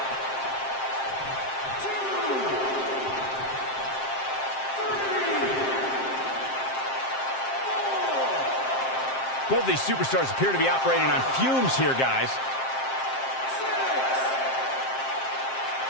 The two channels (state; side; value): late; right; 7.6 ms